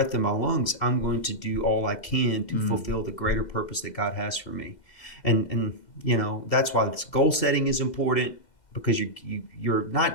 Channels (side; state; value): right; late; 2.1 ms